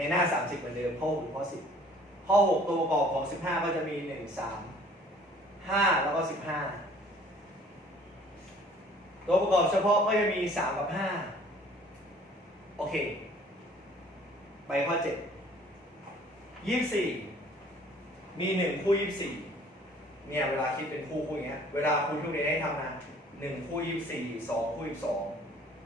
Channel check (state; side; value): normal; both; correlation 0.54